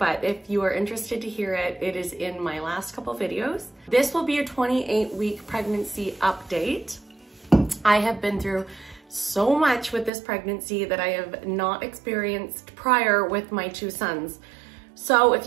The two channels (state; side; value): drops out; left; at 10.1 s